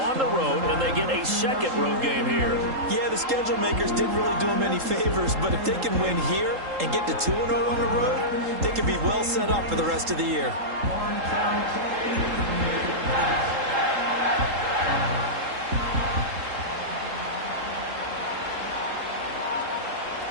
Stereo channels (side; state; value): left; late; 3.8 ms